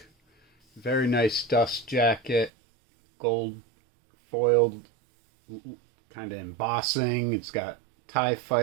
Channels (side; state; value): left; drops out; at 2.5 s